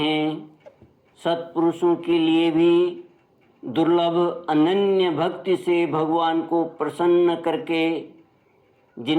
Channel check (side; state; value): both; identical; correlation 1.00